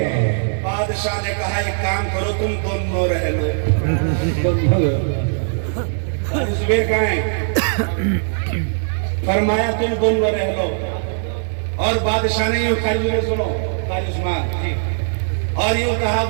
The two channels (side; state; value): left; silent; digital silence